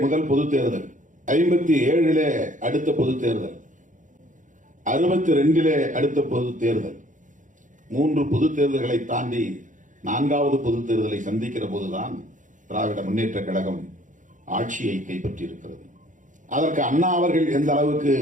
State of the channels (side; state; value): left; late; 0.37 ms